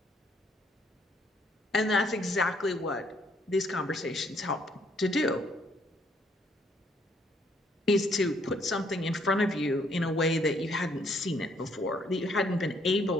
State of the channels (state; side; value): normal; both; correlation 0.67